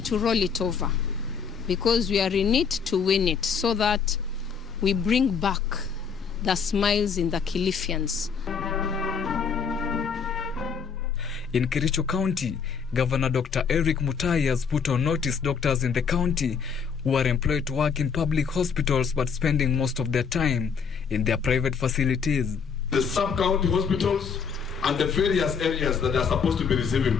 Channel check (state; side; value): quieter; right; 6.2 dB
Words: to roll it over because we are in it to win it so that we bring back the smiles in the Kilifians. In Kericho County, Governor Dr. Eric Mutai has put on notice doctors in the county who are employed to work in public hospitals but spending most of their time in their private facilities. The sub-county hospitals and the various areas that are supposed to be receiving